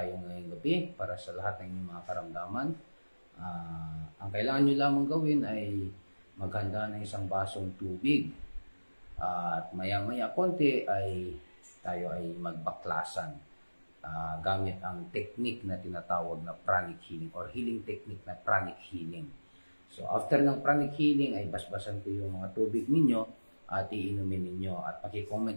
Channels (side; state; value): both; inverted; correlation -1.00